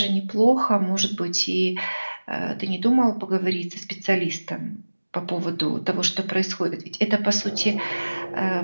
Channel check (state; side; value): inverted; both; correlation -1.00